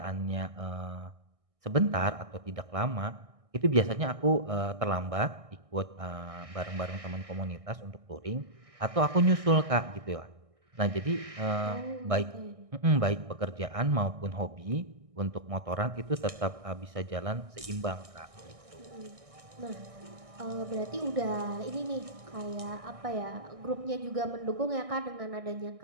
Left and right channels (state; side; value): late; left; 1.6 ms